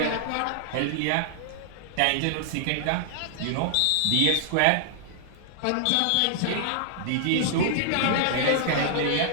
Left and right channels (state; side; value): different; both; correlation -0.01